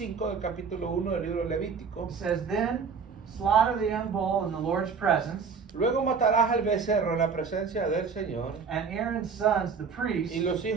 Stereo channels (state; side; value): quieter; left; 5.7 dB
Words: del capítulo 1 del libro de Levítico, It says, Then slaughter the young bull in the Lord's presence, luego matarás al becerro en la presencia del Señor, and Aaron's sons, the priests, y los